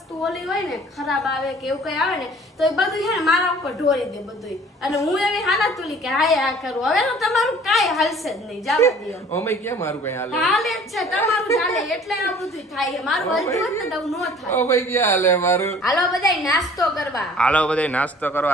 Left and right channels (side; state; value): both; normal; correlation 0.51